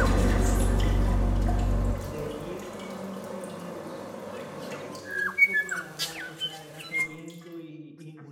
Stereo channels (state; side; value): identical; both; correlation 1.00